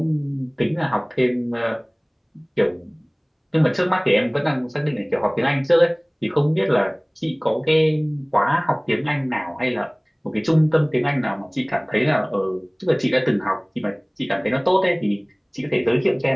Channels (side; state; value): both; identical; correlation 1.00